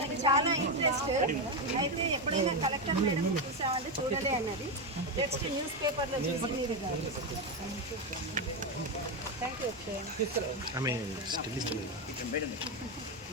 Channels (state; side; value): normal; both; correlation 0.10